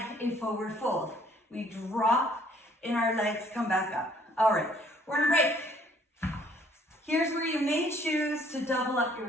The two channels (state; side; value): normal; both; correlation 0.61